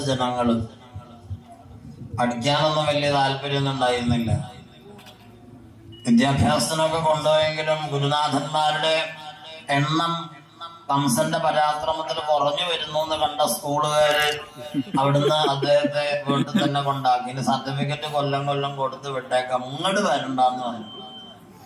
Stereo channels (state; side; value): identical; both; correlation 1.00